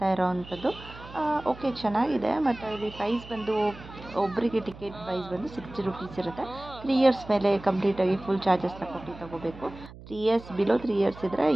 ಇರೋವಂಥದ್ದು. ಓಕೆ, ಚೆನ್ನಾಗಿದೆ. ಮತ್ತು ಇಲ್ಲಿ ಪ್ರೈಸ್ ಬಂದು ಒಬ್ಬರಿಗೆ ಟಿಕೆಟ್ ಪ್ರೈಸ್ ಬಂದು 60 ರೂಪೀಸ್ ಇರುತ್ತೆ. 3 ಇಯರ್ಸ್ ಮೇಲೆ ಕಂಪ್ಲೀಟಾಗಿ ಫುಲ್ ಚಾರ್ಜಸ್ನ ಕೊಟ್ಟು ತಗೋಬೇಕು. 3 ಇಯರ್ಸ್ ಬಿಲೋ 3 ಇಯರ್ಸ್ ಇದ್ದರೆ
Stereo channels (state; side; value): noise; right; hum, 17 dB below the sound